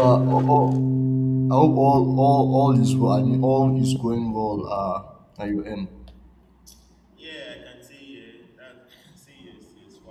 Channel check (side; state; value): both; identical; correlation 1.00